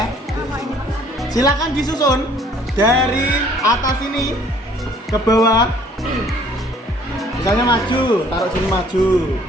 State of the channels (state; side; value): normal; both; correlation 0.58